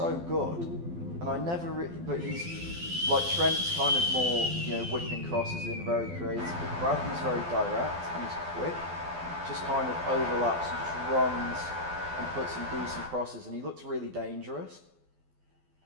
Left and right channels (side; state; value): left; late; 12 ms